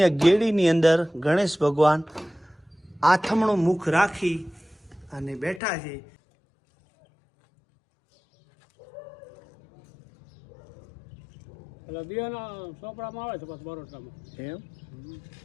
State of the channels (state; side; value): drops out; right; at 5.6 s